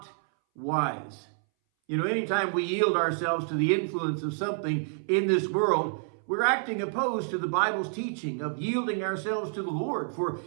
wise." Anytime we yield ourselves to the influence of something in this world, we're acting opposed to the Bible's teaching of yielding ourselves to the Lord for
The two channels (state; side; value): silent; left; 59 dB below the other